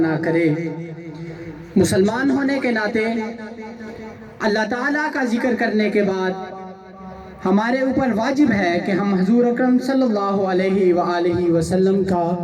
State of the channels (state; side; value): identical; both; correlation 1.00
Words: کرے. مسلمان ہونے کے ناطے اللہ تعالیٰ کا ذکر کرنے کے بعد ہمارے اوپر واجب ہے کہ ہم حضور اکرم صلی اللہ علیہ وآلہ وسلم کا